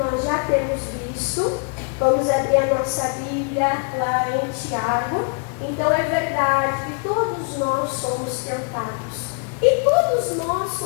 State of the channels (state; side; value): quieter; right; 37.8 dB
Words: já temos visto, vamos abrir a nossa Bíblia lá em Tiago. Então é verdade que todos nós somos tentados. E todos nós